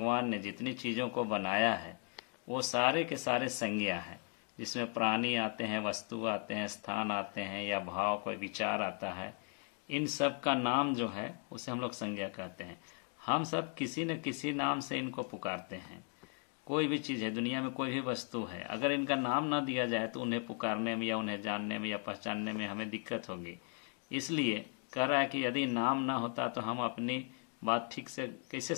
ने जितनी चीज़ों को बनाया है वो सारे के सारे संज्ञा हैं, जिसमें प्राणी आते हैं, वस्तु आते हैं, स्थान आते हैं या भाव, कोई विचार आता है। इन सब का नाम जो है उसे हम लोग संज्ञा कहते हैं। हम सब किसी न किसी नाम से इनको पुकारते हैं। कोई भी चीज़ है, दुनिया में कोई भी वस्तु है, अगर इनका नाम ना दिया जाए तो उन्हें पुकारने में या उन्हें जानने में या पहचानने में हमें दिक्कत होगी। इसलिए कह रहा है कि यदि नाम ना होता तो हम अपनी बात ठीक से कैसे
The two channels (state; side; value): quieter; right; 38.0 dB